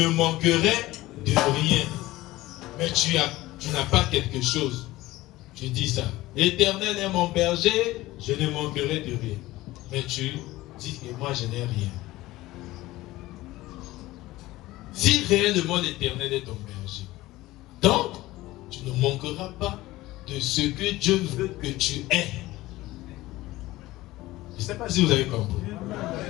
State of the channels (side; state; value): right; quieter; 17.9 dB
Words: manquerai de rien. Mais tu n'as pas quelque chose. Tu dis ça. L'Éternel est mon berger. Je ne manquerai de rien. Mais tu dis que moi je n'ai rien. Si réellement l'Éternel est ton berger, donc tu ne manqueras pas de ce que Dieu veut que tu aies. Je ne sais pas si vous avez compris.